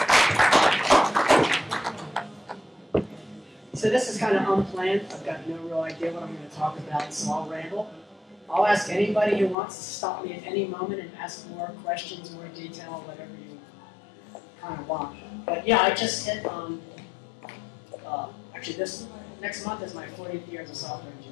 So this is kind of unplanned. I've got no real idea what I'm going to talk about, so I'll ramble. I'll ask anybody who wants to stop me at any moment and ask more questions, more detail, whatever you kind of want. But yeah, I just hit actually this next month is my 40th year as a software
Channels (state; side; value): drops out; right; at 9.6 s